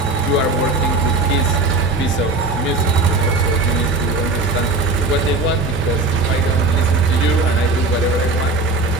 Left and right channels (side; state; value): left; quieter; 3.3 dB